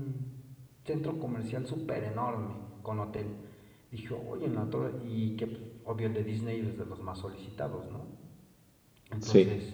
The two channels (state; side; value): identical; both; correlation 1.00